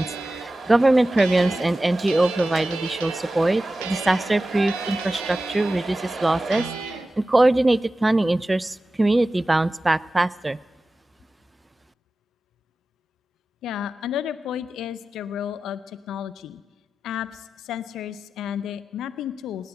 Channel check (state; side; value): normal; both; correlation 0.94